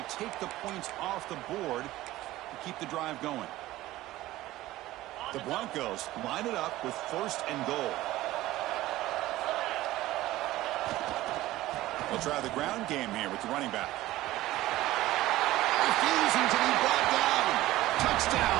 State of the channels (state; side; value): quieter; left; 16.5 dB